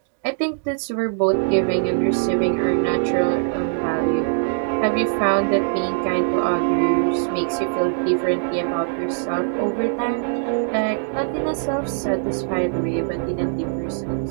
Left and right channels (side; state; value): left; silent; digital silence